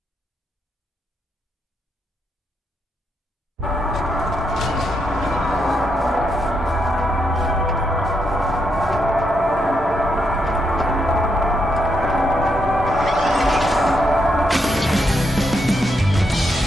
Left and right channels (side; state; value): both; normal; correlation 0.80